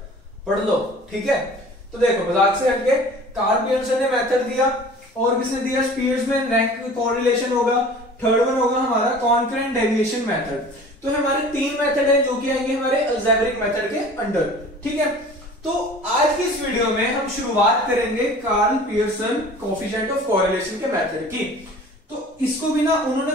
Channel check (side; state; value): both; normal; correlation 0.44